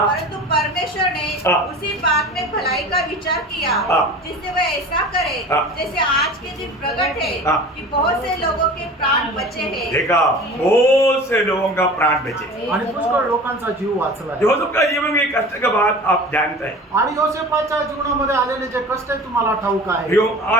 परंतु परमेश्वर ने हाँ। उसी बात में भलाई का विचार किया, हाँ। जिससे वह ऐसा करे हाँ। जैसे आज के दिन प्रकट है हाँ। कि बहुत से लोगों के प्राण बचे हैं। देखा, बहुत से लोगों का प्राण बचे। आणि पुष्कळ लोकांचा जीव वाचलाय. यूसुफ का जीवन में कष्ट का बात आप जानते हैं। आणि योसेफाच्या जीवनामध्ये आलेले जे कष्ट आहे तुम्हाला ठाऊक आहे. प्रियो,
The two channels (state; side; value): normal; both; correlation 0.38